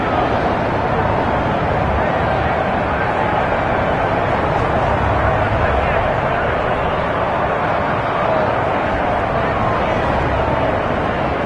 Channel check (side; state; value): both; identical; correlation 1.00